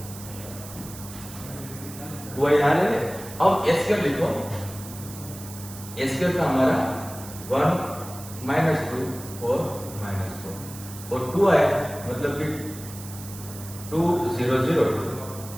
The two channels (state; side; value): noise; right; hiss, 14 dB below the sound